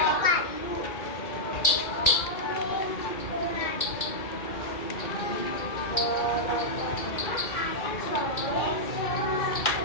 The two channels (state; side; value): late; right; 2.3 ms